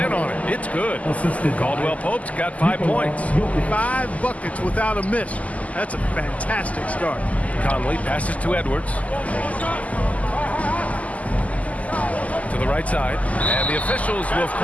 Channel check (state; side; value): late; right; 0.072 ms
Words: on it. It's good. Caldwell Pope's got 5 points. 5 buckets without a miss. That's a fantastic start. Conley passes to Edwards. To the right side. And the officials will